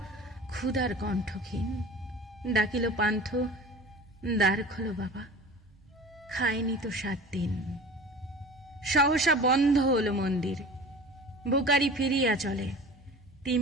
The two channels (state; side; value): normal; both; correlation 0.39